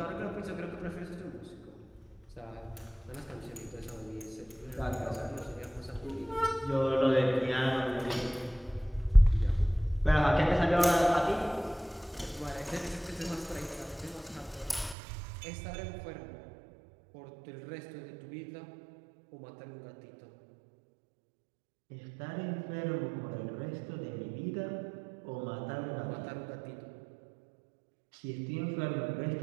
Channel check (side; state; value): left; drops out; at 15.0 s